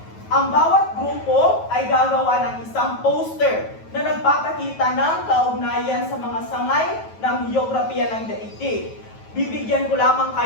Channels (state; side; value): late; right; 9.3 ms